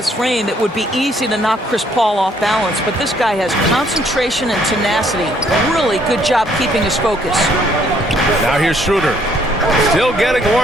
frame it would be easy to knock Chris Paul off balance, but this guy has concentration and tenacity. Really good job keeping his focus. Now here's Schroeder. Still getting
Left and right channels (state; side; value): normal; both; correlation 0.66